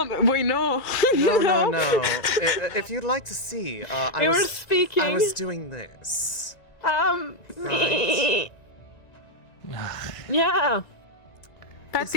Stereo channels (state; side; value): late; right; 1.9 ms